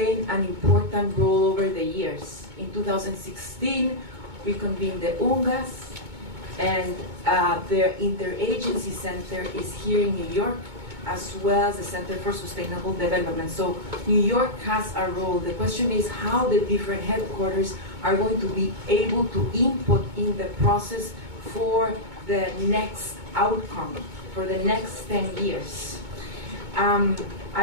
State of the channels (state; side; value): late; left; 2.2 ms